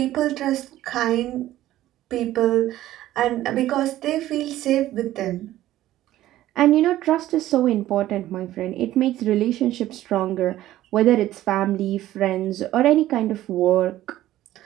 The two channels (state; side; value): quieter; left; 14.2 dB